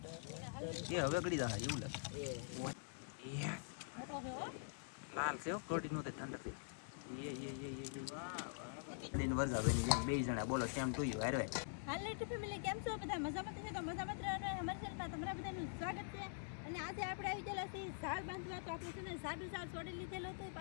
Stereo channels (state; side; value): silent; right; digital silence